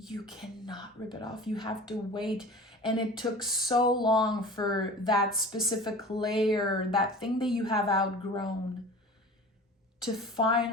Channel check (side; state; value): both; normal; correlation 0.39